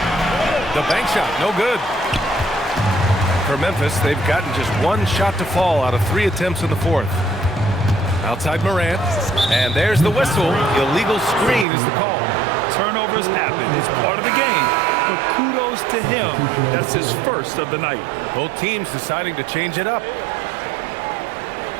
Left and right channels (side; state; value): left; drops out; at 11.7 s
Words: The bank shot, no good. For Memphis, they've gotten just 1 shot to fall out of 3 attempts in the fourth. Outside Morant, and there's the whistle. Illegal screen is the call. Turnovers happen. It's part of the game, but kudos to him. That's his first of the night. Both teams deciding to change it up.